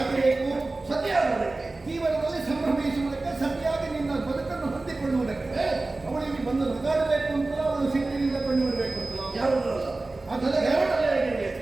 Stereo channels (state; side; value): quieter; left; 3.2 dB